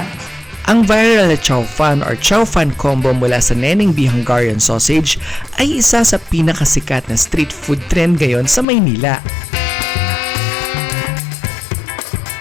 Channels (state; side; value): drops out; right; at 8.7 s